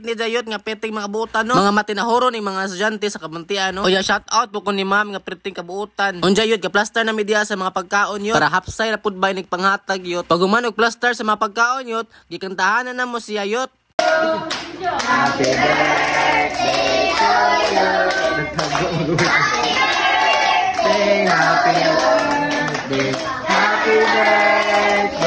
ni yot nga peting mga buutan no. Mga matinahoron ni mga estudyante sa kabuntian no. Oya shout out po ko ni ma'am nga peting kabuutan. Onja yot, ka plaster na media sa mga pagkaon yot, para hapsay ra pud bay nig panghatag yot. Pag umanog plaster sa mga pagkaon yot, gikantahanan na mo siya yot. Happy birthday to you. Say happy birthday. Happy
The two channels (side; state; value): both; identical; correlation 1.00